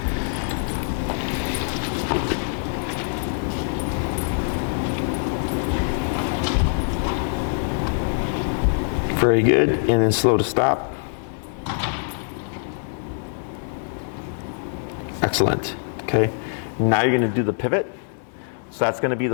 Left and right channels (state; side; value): silent; right; digital silence